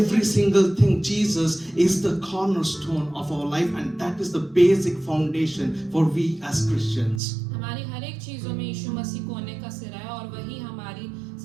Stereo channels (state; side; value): drops out; left; at 7.2 s